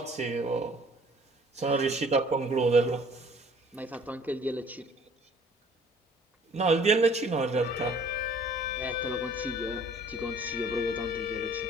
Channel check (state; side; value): normal; both; correlation 0.54